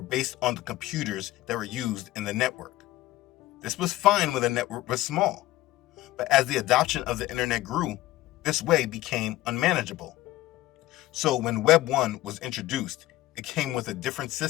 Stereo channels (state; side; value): quieter; right; 16.6 dB